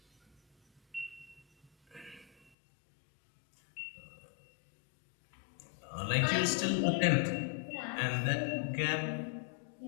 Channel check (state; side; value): drops out; right; at 2.5 s